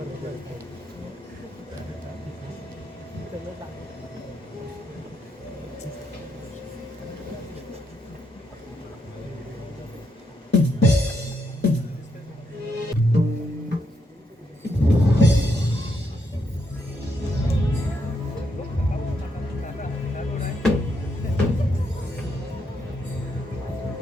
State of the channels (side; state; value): both; normal; correlation 0.79